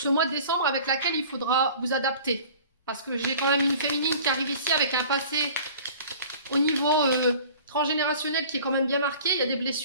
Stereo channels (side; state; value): both; inverted; correlation -0.45